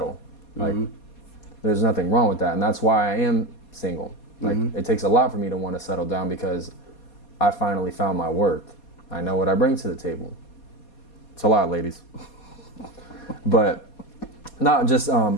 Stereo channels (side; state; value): right; late; 4.2 ms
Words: Like, there's nothing wrong with that. And that's why I am single. Like, it takes a lot for me to want to settle down because I finally found my worth. I know what I bring to the table. It's a lot, ladies. But not just,